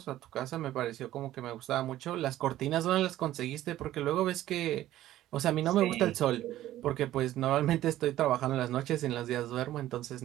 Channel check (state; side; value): quieter; left; 14.0 dB